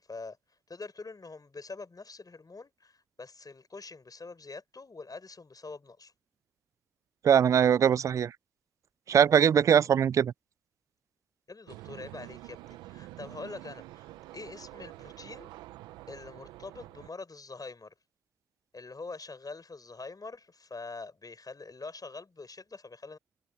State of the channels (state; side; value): quieter; left; 7.4 dB